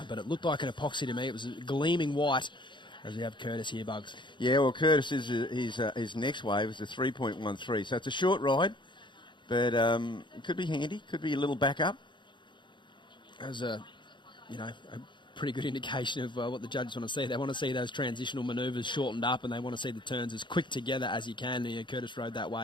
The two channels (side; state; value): right; late; 0.23 ms